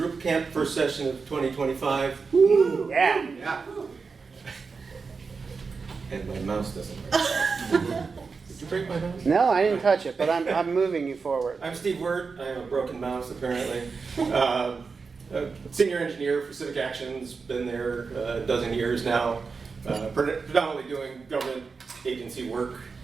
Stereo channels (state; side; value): quieter; left; 4.9 dB